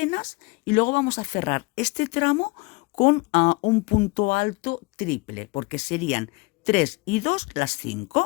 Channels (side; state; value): right; quieter; 26.1 dB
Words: y luego vamos a cerrar este tramo con un punto alto triple, porque serían 3 y 2 las